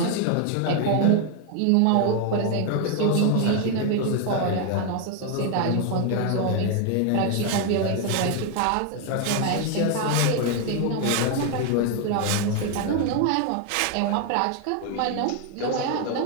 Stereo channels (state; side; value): different; both; correlation 0.01